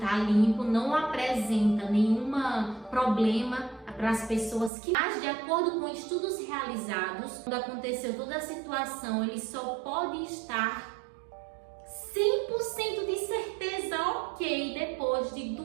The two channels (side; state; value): left; drops out; at 4.7 s